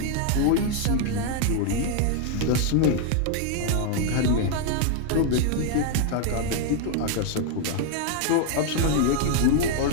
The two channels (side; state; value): both; different; correlation 0.00